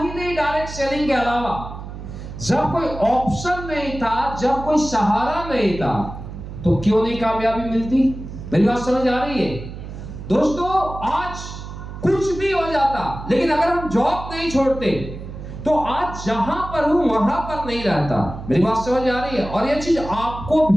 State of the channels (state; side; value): noise; right; hum, 11 dB below the sound